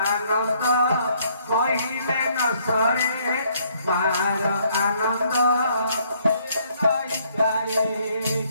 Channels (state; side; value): inverted; both; correlation -0.67